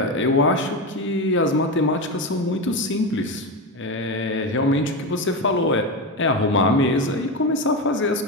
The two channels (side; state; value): both; normal; correlation 0.16